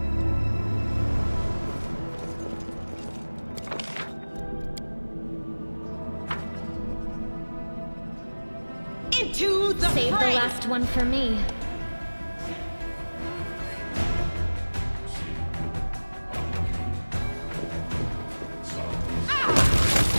Into the Save the fray! last one for me.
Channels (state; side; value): inverted; both; correlation -1.00